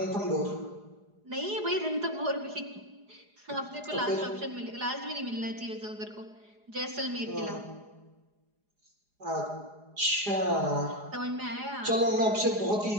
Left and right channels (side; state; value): left; late; 4.8 ms